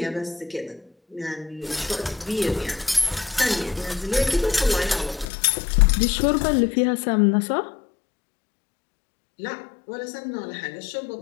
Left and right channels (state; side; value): drops out; right; at 5.2 s